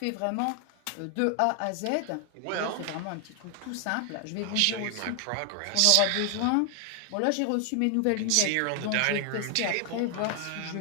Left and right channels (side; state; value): both; different; correlation 0.00